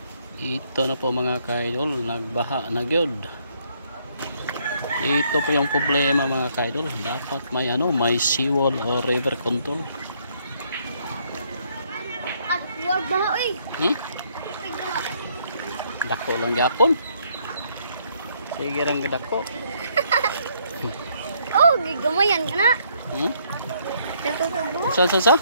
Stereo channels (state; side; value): inverted; both; correlation -0.69